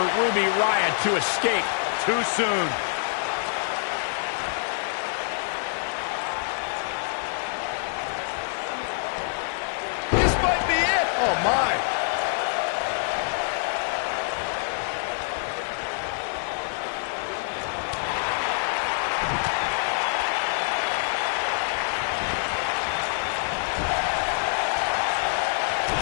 Ruby Riott to escape too soon. This might be it. Oh, my.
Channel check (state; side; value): silent; right; 61 dB below the other